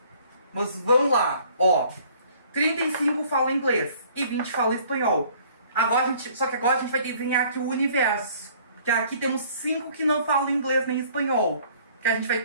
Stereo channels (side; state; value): both; inverted; correlation -0.56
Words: Mas vamos lá, ó. 35 falam inglês e 20 falam espanhol. Só que agora a gente vai desenhar aqui o universo. Porque aqui temos 5 que não falam inglês nem espanhol. Que a gente vai